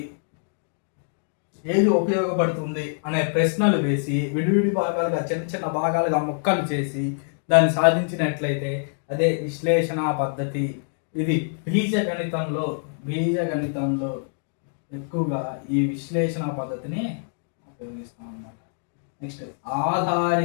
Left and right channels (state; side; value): silent; right; digital silence